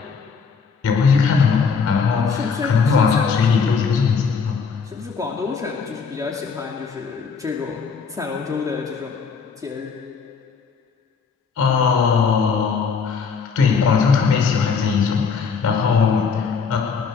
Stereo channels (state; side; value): quieter; right; 5.6 dB